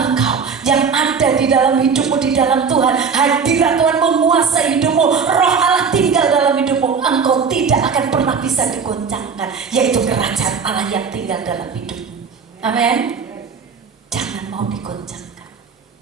yang ada di dalam hidupmu, di dalam Tuhan, hadirat Tuhan menguasai hidupmu, Roh Allah tinggal dalam hidupmu, engkau tidak akan pernah bisa digoncangkan, yaitu kerajaan Allah yang tinggal dalam hidupmu. Amin. Jangan mau digoncangkan.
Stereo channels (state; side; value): quieter; left; 5.8 dB